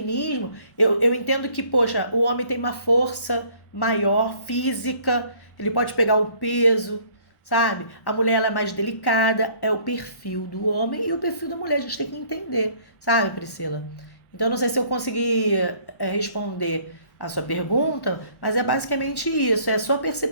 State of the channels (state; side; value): late; right; 1.1 ms